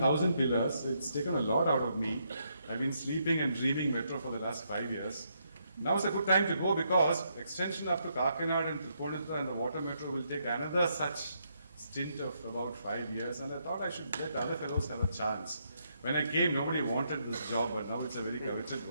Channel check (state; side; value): inverted; both; correlation -0.77